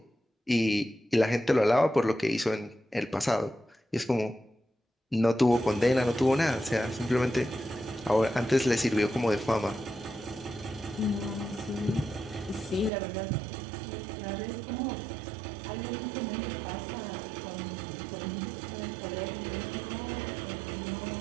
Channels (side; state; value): left; drops out; at 12.9 s